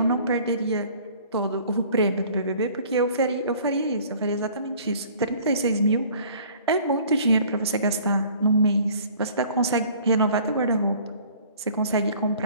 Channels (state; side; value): inverted; both; correlation -0.52